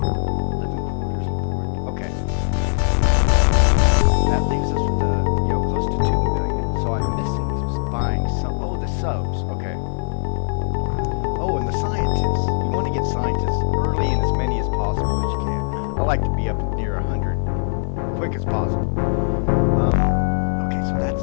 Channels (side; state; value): right; silent; 57 dB below the other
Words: Living quarters report. Okay. That leaves us with close to 2 million. So I'm missing buying some. Oh, the subs. Okay. Oh, and the scientists. You want to get scientists early and as many as possible as you can. I like to be up near 100 quick as possible. Okay, so